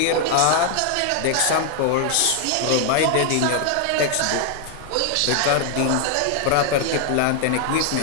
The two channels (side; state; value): both; different; correlation 0.00